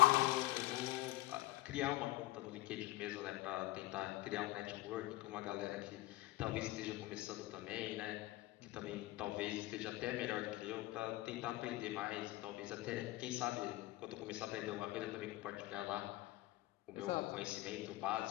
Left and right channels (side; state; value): right; quieter; 18.0 dB